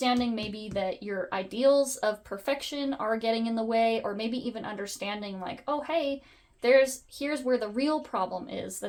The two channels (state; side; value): identical; both; correlation 1.00